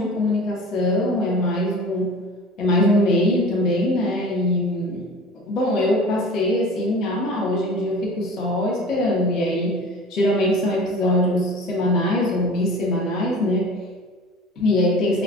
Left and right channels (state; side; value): normal; both; correlation 0.40